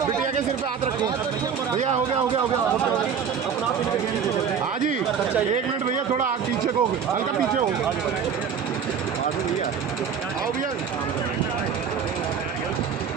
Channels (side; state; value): left; quieter; 7.0 dB